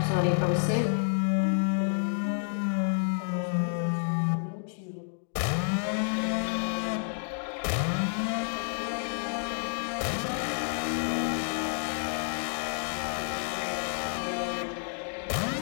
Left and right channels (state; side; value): silent; right; 58 dB below the other